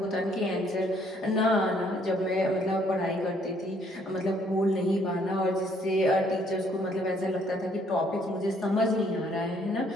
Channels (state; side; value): normal; both; correlation 0.65